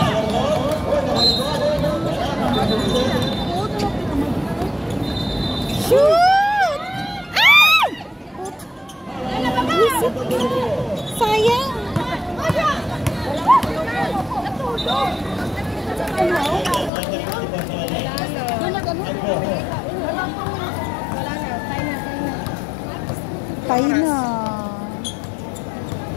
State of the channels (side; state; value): right; drops out; at 16.9 s